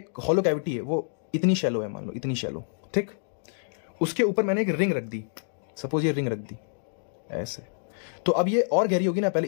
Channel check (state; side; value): silent; right; digital silence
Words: हॉलो कैविटी है, वो इतनी शैलो है, मान लो इतनी शैलो। ठीक, उसके ऊपर मैंने एक रिंग रख दी, सपोज ये रिंग रख दी ऐसे, तो अब ये और गहरी होगी ना, पहले